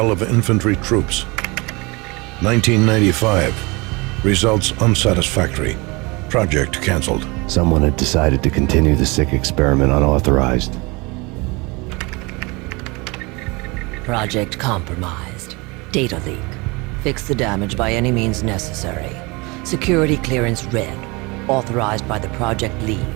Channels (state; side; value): quieter; left; 26.1 dB